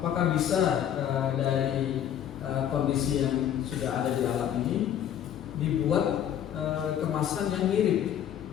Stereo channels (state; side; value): quieter; right; 10.1 dB